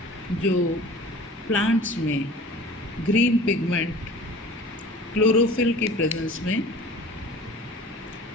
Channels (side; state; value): both; normal; correlation 0.43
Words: जो plants में ग्रीन पिगमेंट क्लोरोफिल की प्रेजेंस में